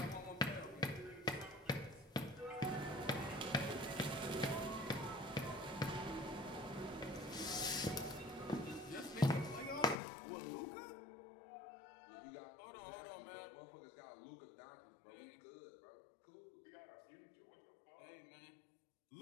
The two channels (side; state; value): right; drops out; at 10.0 s